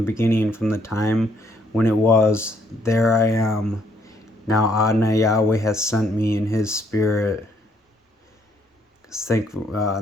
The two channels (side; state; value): both; normal; correlation 0.69